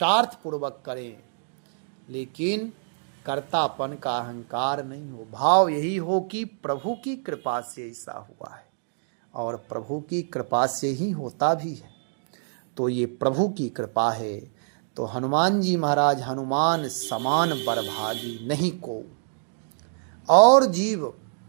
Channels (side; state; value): left; silent; digital silence